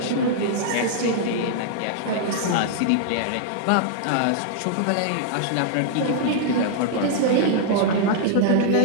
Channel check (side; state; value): both; different; correlation -0.01